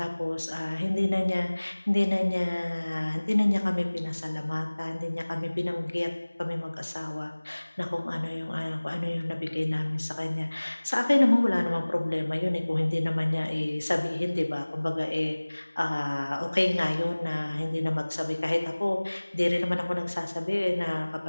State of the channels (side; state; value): both; inverted; correlation -1.00